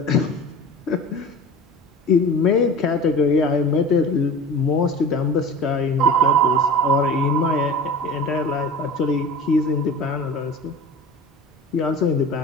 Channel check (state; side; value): normal; both; correlation 0.36